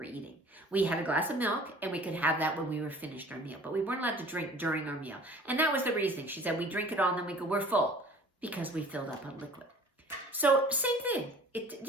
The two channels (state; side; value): normal; both; correlation 0.48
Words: eating. We had a glass of milk and we could have that when we were finished our meal, but we weren't allowed to drink during our meal. And that was the reason. She said, we drink it all and then we go, we're full because we filled up on liquid. So same thing. It